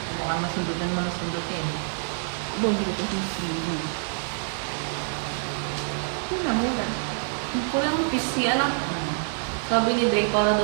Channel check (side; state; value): left; silent; digital silence